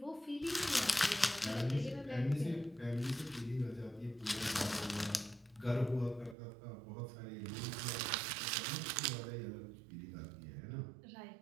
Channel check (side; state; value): left; drops out; at 6.4 s